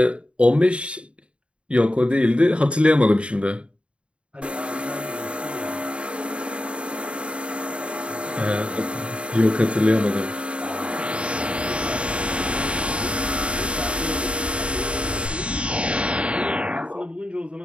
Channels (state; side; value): late; left; 0.058 ms